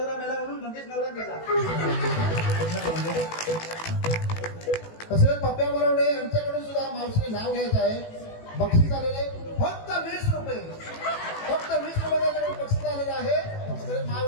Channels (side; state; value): right; late; 18 ms